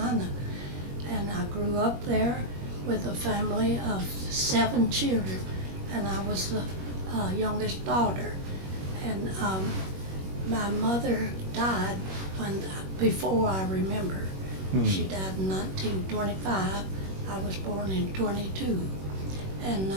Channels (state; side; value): late; left; 21 ms